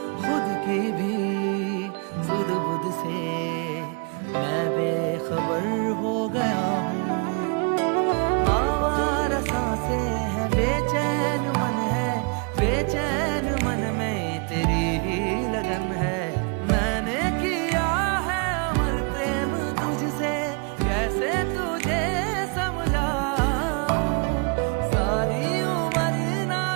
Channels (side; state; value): left; quieter; 34.3 dB